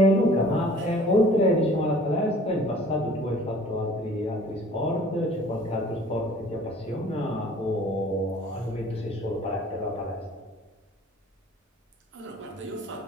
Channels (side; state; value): both; normal; correlation 0.51